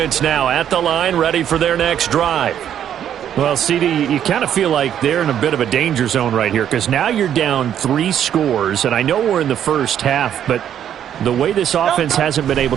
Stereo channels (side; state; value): left; quieter; 9.9 dB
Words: now at the line, ready for their next drive. Well, CD, you kind of feel like they're in a bit of a danger zone right here because now you're down 3 scores, and I know we're in the first half, but the way this offense hasn't been able